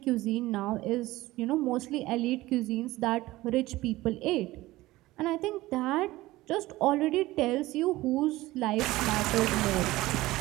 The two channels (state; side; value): quieter; left; 18.1 dB